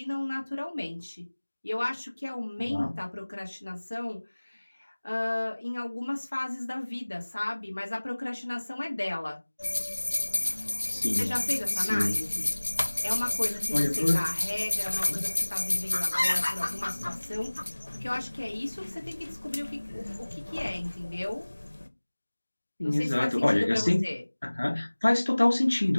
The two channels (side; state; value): both; inverted; correlation -1.00